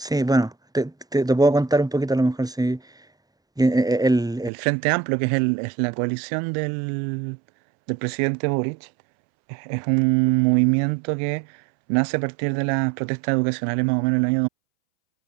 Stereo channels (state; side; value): drops out; left; at 4.5 s